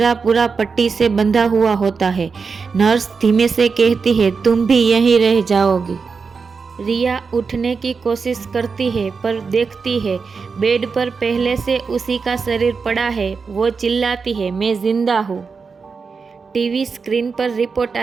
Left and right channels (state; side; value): quieter; left; 5.1 dB